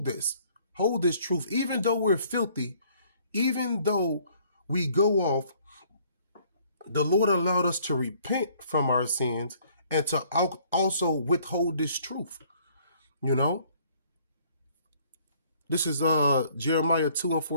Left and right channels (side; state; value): both; inverted; correlation -0.60